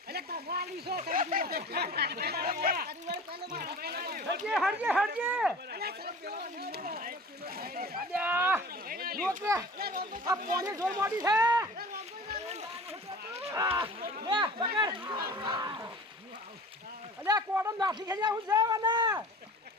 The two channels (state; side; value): normal; both; correlation 0.41